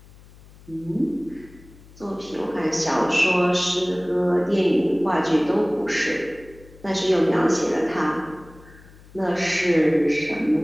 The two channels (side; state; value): left; noise; hum, 23 dB below the sound